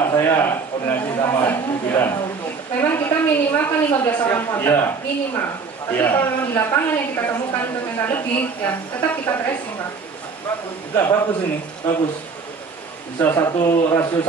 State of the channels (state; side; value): quieter; left; 4.9 dB